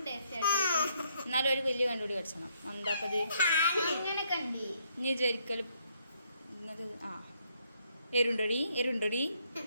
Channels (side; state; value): both; inverted; correlation -0.71